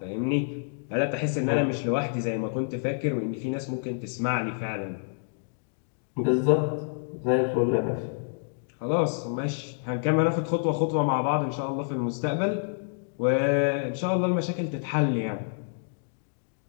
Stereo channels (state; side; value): silent; right; digital silence